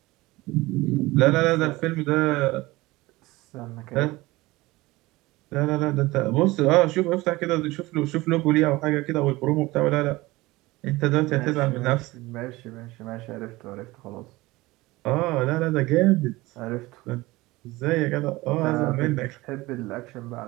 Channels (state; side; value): quieter; left; 20.2 dB